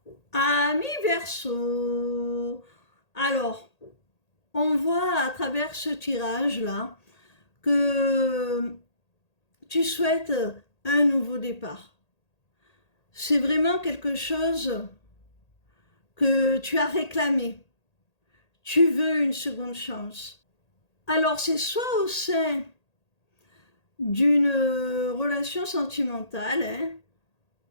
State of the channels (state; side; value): late; right; 1.8 ms